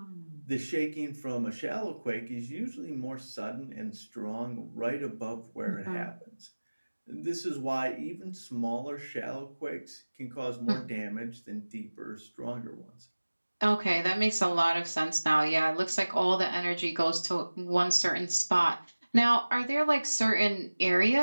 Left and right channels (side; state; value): both; inverted; correlation -1.00